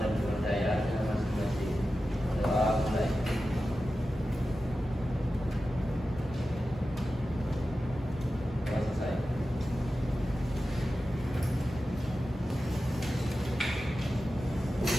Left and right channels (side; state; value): left; noise; rumble, 17 dB below the sound